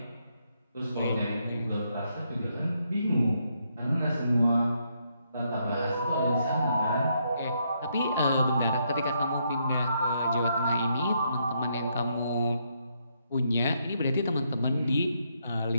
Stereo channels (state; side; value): inverted; both; correlation -0.76